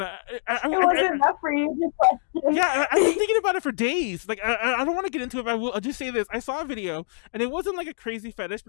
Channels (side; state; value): right; silent; digital silence